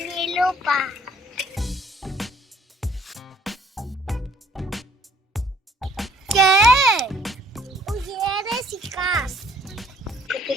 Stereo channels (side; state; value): both; normal; correlation 0.59